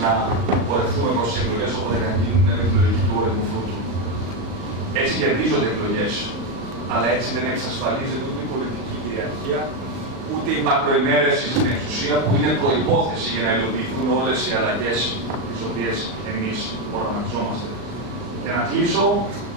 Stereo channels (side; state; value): left; late; 38 ms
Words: να πορευτούμε προς τις εκλογές όποτε καν γίνουν με τη λογική του όριμου φρούτου. Έτσι κερδίζονται εκλογές, αλλά έτσι δεν εξασφαλίζεται ούτε η πολιτική κυριαρχία, ούτε η μακροημέρευση στην εξουσία, που είναι προϋπόθεση για να υλοποιηθούν όλες οι αλλαγές τις οποίες εμείς οραματιζόμαστε. Και να κλείσω